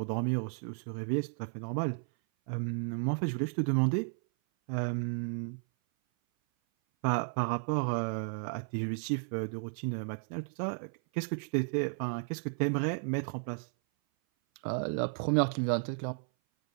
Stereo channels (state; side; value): silent; left; 55 dB below the other